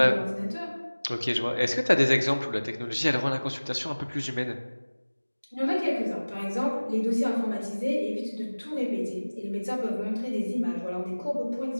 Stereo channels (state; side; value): inverted; both; correlation -1.00